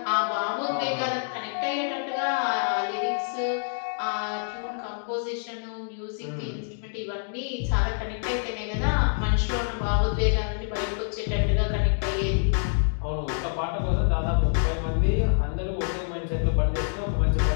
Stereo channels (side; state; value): right; silent; digital silence